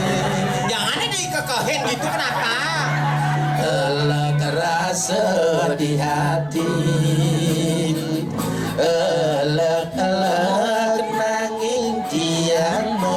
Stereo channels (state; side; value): identical; both; correlation 1.00